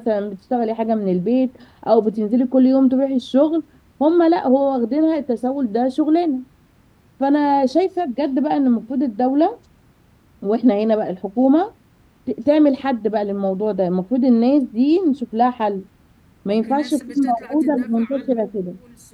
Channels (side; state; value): both; identical; correlation 1.00